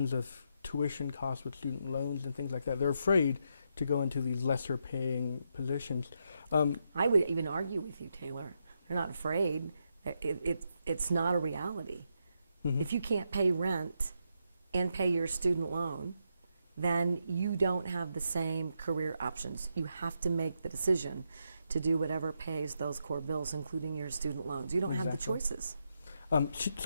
of tuition costs with student loans and things like that, they're afraid to go into these lesser paying positions. I would even argue with you, Taylor. They're not afraid. It's not a reality. Mhm. If you can't pay rent and pay your student loan, then you don't have the same career options. You have to make the decision to do whatever pays those core bills, including your student loans. You don't have the Exactly. choices.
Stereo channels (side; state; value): both; inverted; correlation -0.82